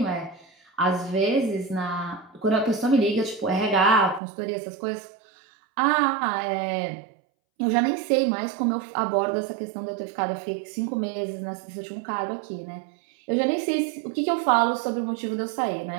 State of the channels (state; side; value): drops out; left; at 4.2 s